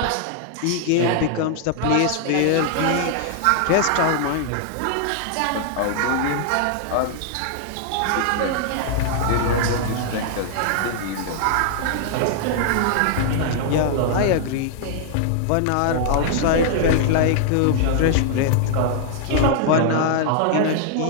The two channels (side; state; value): both; different; correlation 0.00